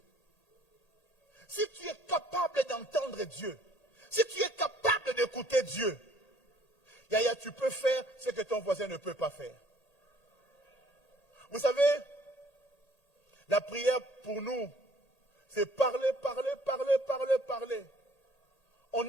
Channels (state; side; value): late; right; 1.8 ms